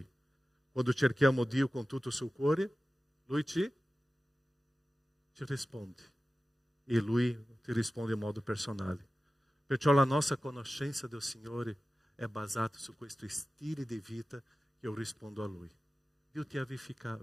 Quando cerchiamo Dio con tutto il suo cuore, Lui ci risponde. E Lui ti risponde in modo personale. Perciò la nostra conoscenza del Signore è basata su questo stile di vita che io rispondo a Lui. Dio ti ha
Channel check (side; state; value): both; normal; correlation 0.95